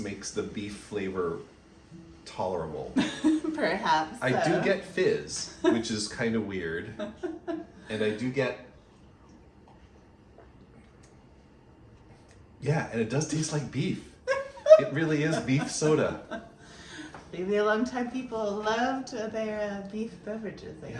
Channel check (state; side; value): identical; both; correlation 1.00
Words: makes the beef flavor tolerable. Perhaps. I do get fizz, which is kind of weird. And I do get, yeah, and it does taste like beef. It really is beef soda. Maybe a long time people loved their beef beverages, I guess.